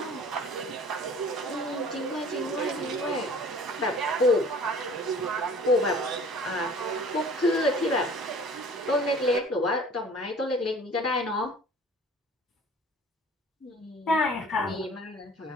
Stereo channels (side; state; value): both; normal; correlation 0.47